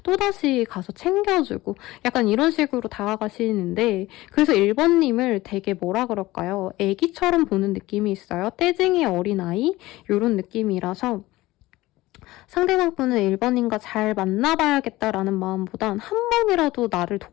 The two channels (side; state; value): right; quieter; 18.4 dB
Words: 또다시 가서 챙겨주고 약간 이런 식으로 다가가시는데, 그래서 1번님을 되게 뭐라 그럴까요? 애기처럼 보는 느낌이 있어요. 떼쟁이 어린아이? 이런 느낌이라서 상대방 분은 1번님과 잘 만나봐야겠다라는 마음보단 한 번이라도 나를